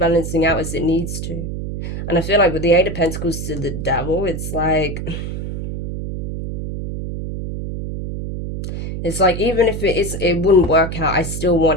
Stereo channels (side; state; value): right; noise; hum, 5 dB below the sound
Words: out as it needs to. And I feel like with the Eight of Pentacles to the Devil, it's like even if it wouldn't work out, I still